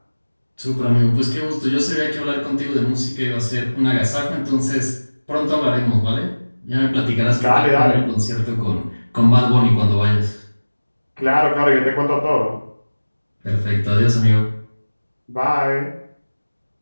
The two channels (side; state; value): both; inverted; correlation -1.00